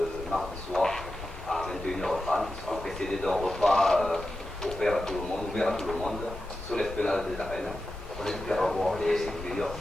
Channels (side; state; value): both; normal; correlation 0.91